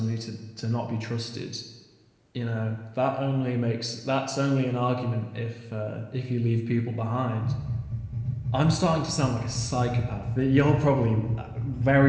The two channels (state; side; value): identical; both; correlation 1.00